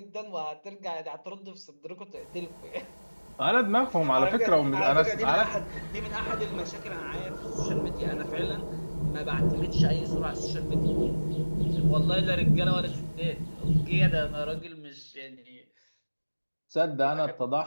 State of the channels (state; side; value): inverted; both; correlation -1.00